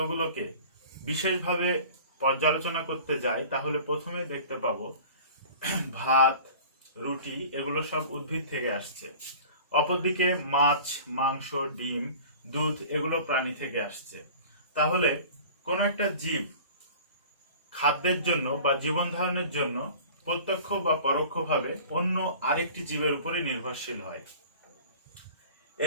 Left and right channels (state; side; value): inverted; both; correlation -0.43